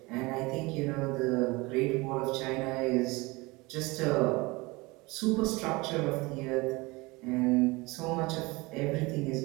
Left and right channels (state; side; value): quieter; left; 23.6 dB